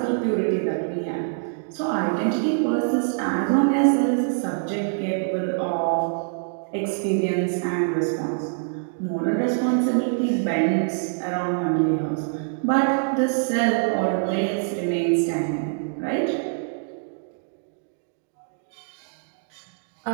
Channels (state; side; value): silent; left; digital silence